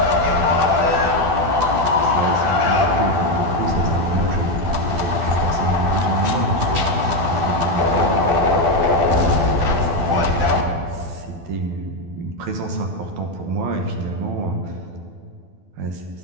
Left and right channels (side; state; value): left; late; 12 ms